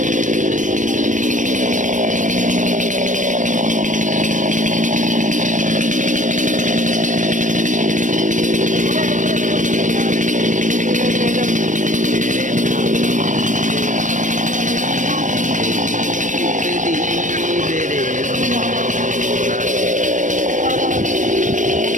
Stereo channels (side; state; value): left; late; 0.37 ms